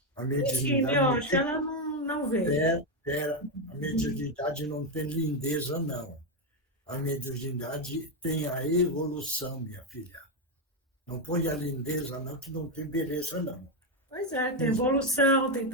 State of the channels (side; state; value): both; normal; correlation 0.06